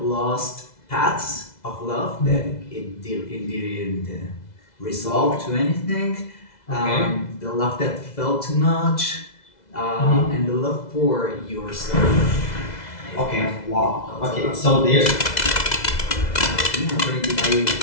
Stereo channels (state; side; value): late; right; 2.0 ms